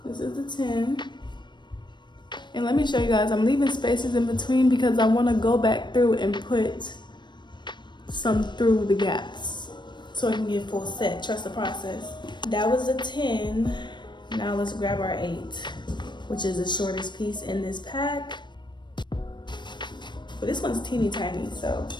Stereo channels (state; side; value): late; right; 0.22 ms